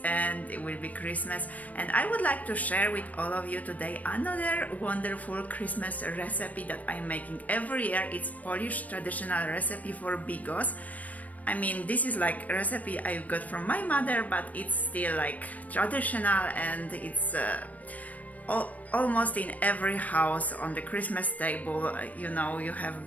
and it will be Christmas, and I would like to share with all of you today another wonderful Christmas recipe that I'm making every year. It's Polish traditional recipe for Bigos. I mean, this is like a recipe I got from my mother, but it's still like traditional, and it's almost in every house on the Christmas table. You know, you have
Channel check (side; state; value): right; late; 0.072 ms